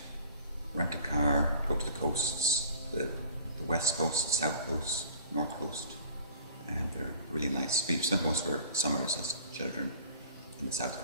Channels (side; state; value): both; inverted; correlation -0.49